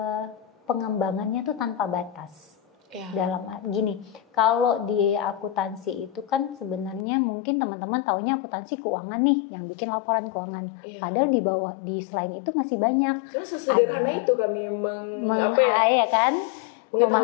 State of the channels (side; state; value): right; drops out; at 7.0 s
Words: pengembangannya tuh tanpa batas. Dalam gini, kalau di akuntansi itu kan sebenarnya mungkin teman-teman taunya akuntansi keuangan nih yang bikin laporan keuangan. Padahal di bawah di selain itu masih banyak. Cuma sesederhana itu kami ya kan?